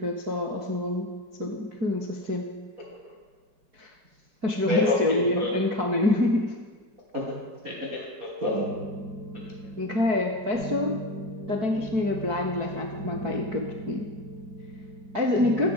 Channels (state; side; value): late; left; 4.6 ms